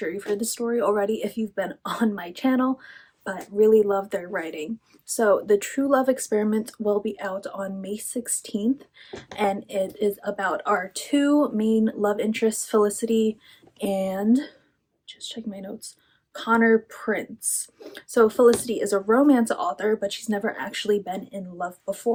you've heard the story already if you've been on my channel, but really love their writing. So The True Love Experiment will be out on May 16th, and it is about our two main love interests, Felicity and, just check my notes, Connor Prince. So Felicity is a romance author, but she's never actually been in love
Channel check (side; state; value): both; identical; correlation 1.00